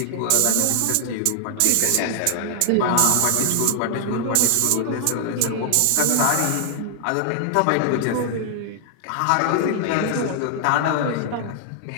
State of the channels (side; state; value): both; different; correlation 0.00